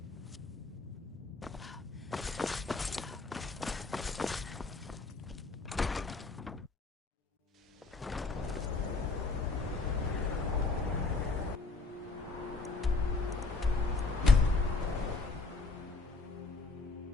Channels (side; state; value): right; quieter; 3.8 dB